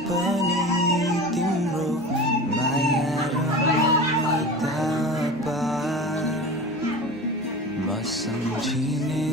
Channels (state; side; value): normal; both; correlation 0.34